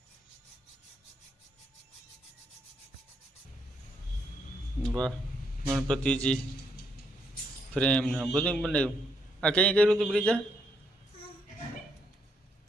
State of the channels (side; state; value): both; normal; correlation 0.75